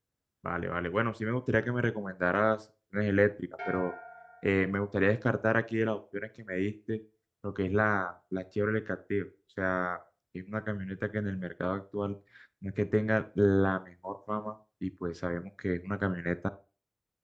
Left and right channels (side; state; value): both; identical; correlation 1.00